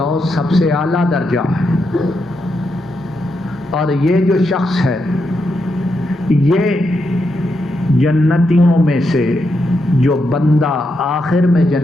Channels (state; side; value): normal; both; correlation 0.83